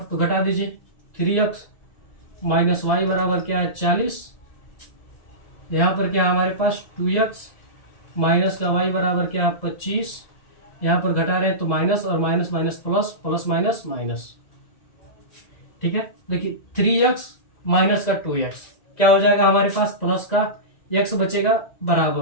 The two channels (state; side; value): late; right; 2.0 ms